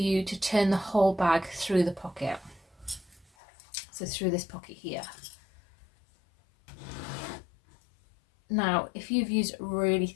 to turn the whole bag through the pocket. So through this pocket here. Now, if you've used really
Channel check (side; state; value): right; drops out; at 3.2 s